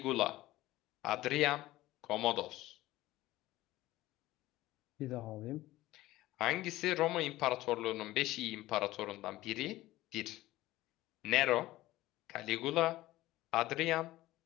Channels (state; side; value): quieter; right; 16.8 dB